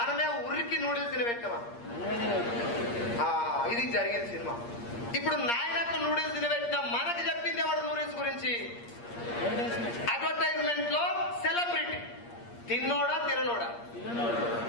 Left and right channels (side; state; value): right; late; 8.5 ms